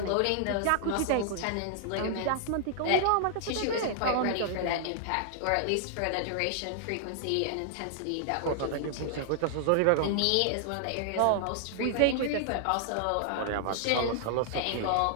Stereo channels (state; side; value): different; both; correlation 0.00